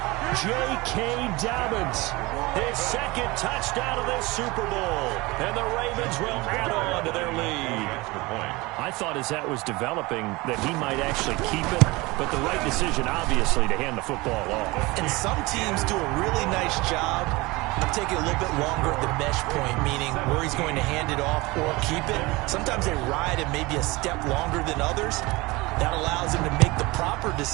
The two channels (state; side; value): quieter; left; 22.7 dB